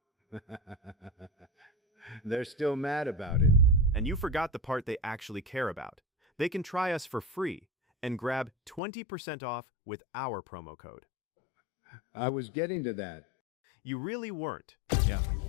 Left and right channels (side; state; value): right; drops out; at 8.8 s